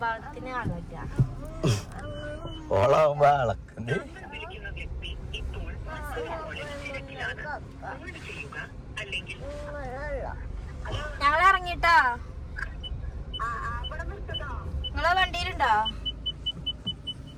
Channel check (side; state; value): both; identical; correlation 1.00